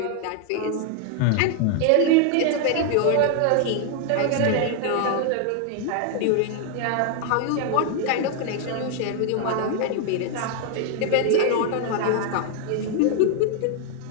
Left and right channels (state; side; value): different; both; correlation 0.00